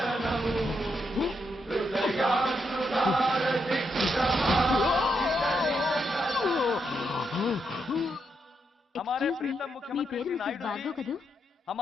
हमारे प्रीतम मुख्यमंत्री श्री नायडू जी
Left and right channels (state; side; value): normal; both; correlation 0.81